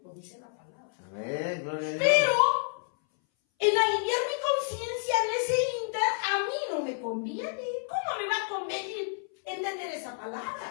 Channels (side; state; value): right; silent; 58 dB below the other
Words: lo dice la palabra. Amén, gloria a Dios. Pero en aliviar mi conciencia en ese inter, a mí no me conviene. ¿Cómo me va a convenir entender esa